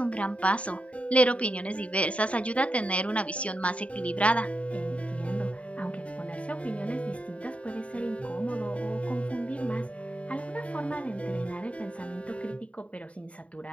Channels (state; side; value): late; right; 0.064 ms